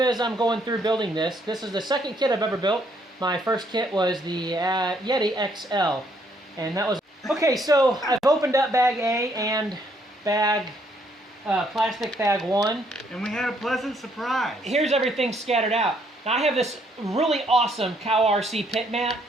as I'm going through building this. This is the second kit I've ever built. My first kit was the Yeti XL. And that was... Okay, so I've opened up bag A and plastic bag 1. And we had a pleasant surprise. Here's everything scattered out. Now I have this really awesome Cow RC pit mat,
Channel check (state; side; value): normal; both; correlation 0.69